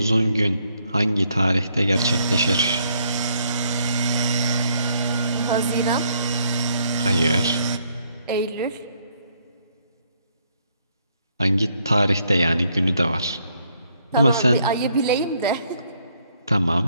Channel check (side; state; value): both; inverted; correlation -0.70